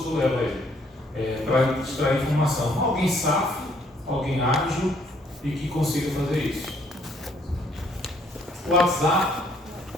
leva ele. Para extrair informação. Alguém safo, alguém ágil e que consiga fazer isso. O WhatsApp.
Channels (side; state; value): both; normal; correlation 0.66